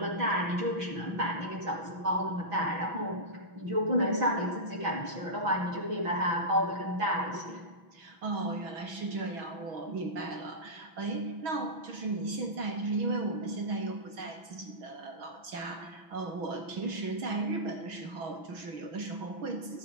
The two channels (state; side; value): late; left; 6.2 ms